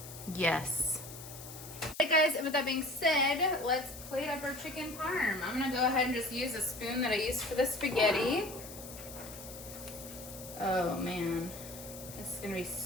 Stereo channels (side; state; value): left; noise; hiss, 13 dB below the sound